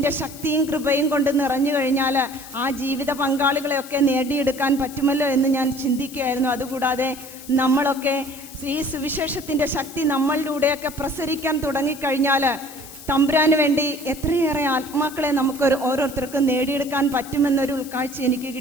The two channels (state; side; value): noise; left; hiss, 16 dB below the sound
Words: ശക്തിയും കൃപയും കൊണ്ട് നിറഞ്ഞു കഴിഞ്ഞാൽ ആ ജീവിത പങ്കാളികളെയൊക്കെ നേടിയെടുക്കാൻ പറ്റുമല്ലോ എന്ന് ഞാൻ ചിന്തിക്കുകയായിരുന്നു. അതുകൂടാതെ നമ്മളൊക്കെ ഈ സുവിശേഷത്തിൻ്റെ ശക്തി നമ്മളിലൂടെയൊക്കെ പ്രസരിക്കാൻ തുടങ്ങിക്കഴിഞ്ഞാൽ തമ്പുരാന് വേണ്ടി എത്രയേറെ ആത്മാക്കളെ നമുക്ക് ഓരോരുത്തർക്കും നേടിയെടുക്കാൻ പറ്റുമെന്നൊരു ഉൾക്കാഴ്ച എനിക്ക്